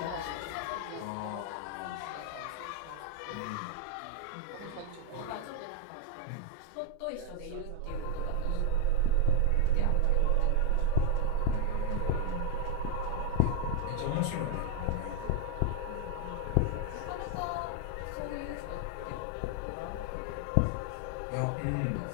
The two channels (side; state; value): both; different; correlation 0.00